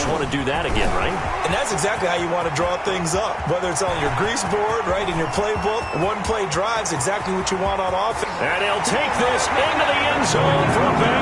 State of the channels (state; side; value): identical; both; correlation 1.00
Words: want to do that again, right? And that's exactly how you want to draw things up. Whether it's on your grease board, right, in your playbook, one play drive's exactly what you want on offense. And he'll take this into the end zone for a